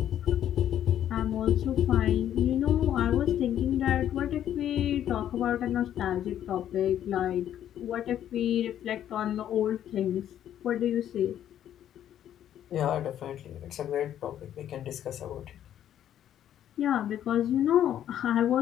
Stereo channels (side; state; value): right; quieter; 10.8 dB